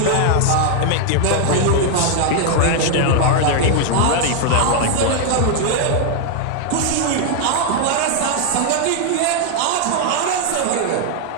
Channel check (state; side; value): different; both; correlation 0.00